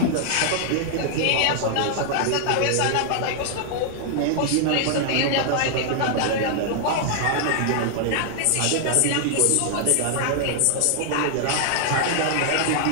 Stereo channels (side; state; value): both; different; correlation 0.00